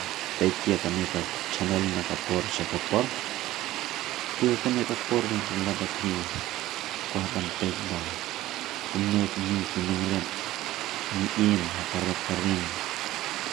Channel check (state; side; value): quieter; left; 15.7 dB